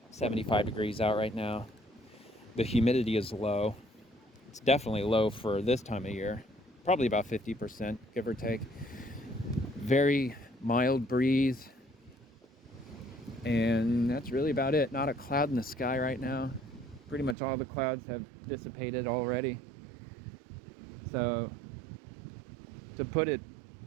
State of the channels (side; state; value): left; drops out; at 17.4 s